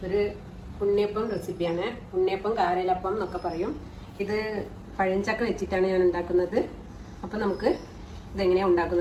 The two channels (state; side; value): identical; both; correlation 1.00